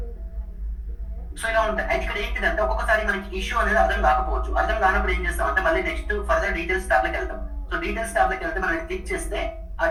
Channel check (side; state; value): both; identical; correlation 1.00